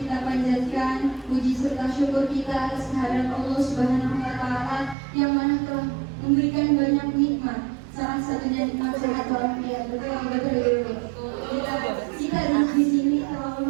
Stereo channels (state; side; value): drops out; left; at 5.0 s